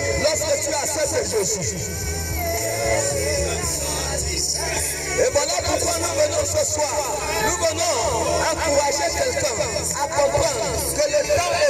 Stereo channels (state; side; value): identical; both; correlation 1.00